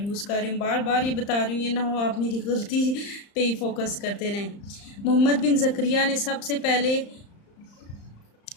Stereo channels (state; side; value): late; right; 35 ms